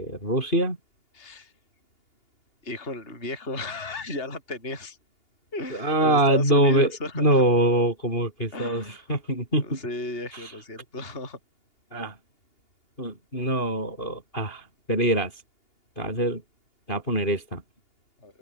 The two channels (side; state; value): right; late; 2.8 ms